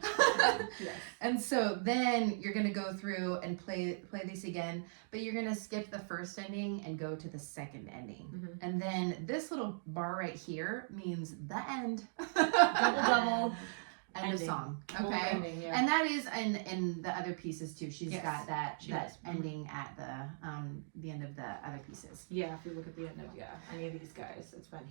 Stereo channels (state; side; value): silent; left; digital silence